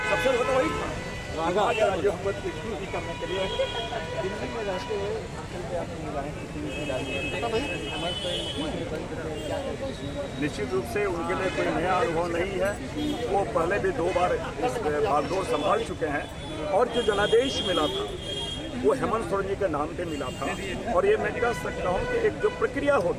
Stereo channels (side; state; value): both; identical; correlation 1.00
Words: सबसे ज्यादा वही जो करने के लिए दिल्ली में रहते हुए निश्चित रूप से उनके लिए कोई नया अनुभव नहीं है। वो पहले भी 2 बार इस बागडोर संभाल चुके हैं, और जो जनादेश मिला था वो हेमंत सोरेन जी के नाम पे मिला था। और ये मैं कह सकता हूँ कि एक जो प्रक्रिया